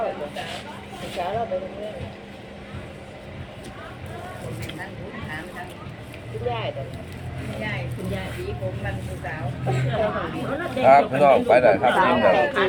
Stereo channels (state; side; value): identical; both; correlation 1.00